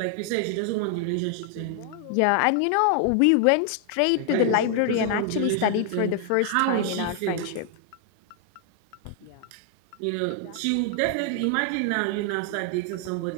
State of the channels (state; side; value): different; both; correlation 0.00